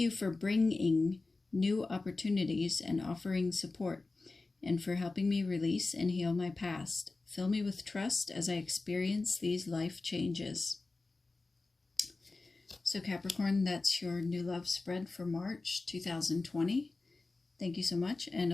new opportunities and offering support, and for helping me release and heal my past. Fill me with trust as I experience these life changes. So Capricorn, that's your new love spread for March 2020. Thank you so much, and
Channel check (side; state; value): right; quieter; 3.5 dB